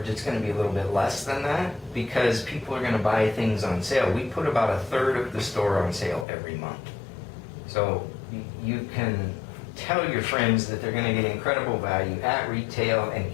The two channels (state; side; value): drops out; right; at 6.2 s